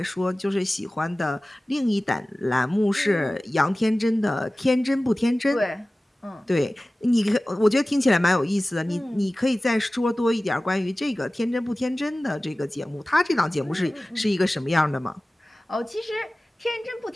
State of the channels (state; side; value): normal; both; correlation 0.97